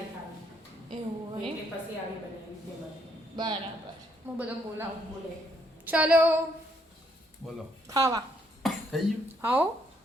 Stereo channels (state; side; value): normal; both; correlation 0.71